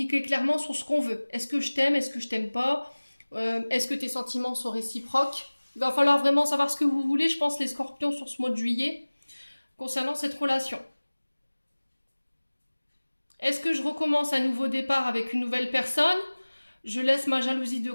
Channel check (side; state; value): both; inverted; correlation -1.00